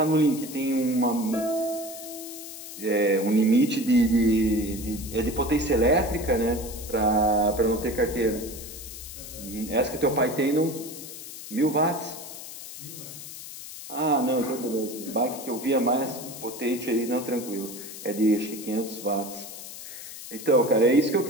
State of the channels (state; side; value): noise; left; hiss, 12 dB below the sound